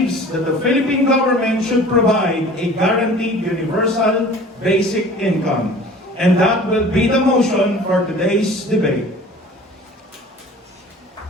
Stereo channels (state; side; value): normal; both; correlation 0.45